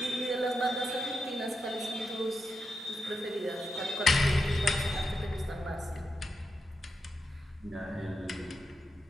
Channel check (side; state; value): both; normal; correlation 0.86